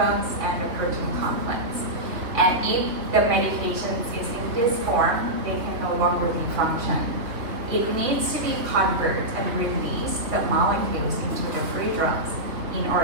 and the protein complex. And if the medication is in this form, they can no longer be function. It needs to be converted and release the molecules into the free drugs in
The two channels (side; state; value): left; late; 3.2 ms